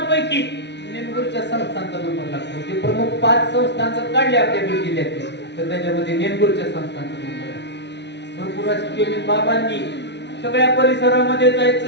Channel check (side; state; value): right; late; 0.50 ms